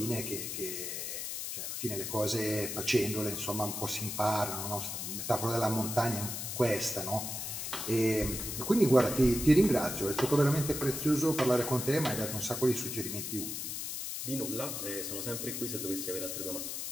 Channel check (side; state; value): left; noise; hiss, 5 dB below the sound